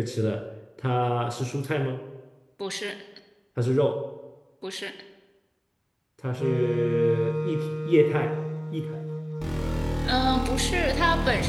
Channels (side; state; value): both; identical; correlation 1.00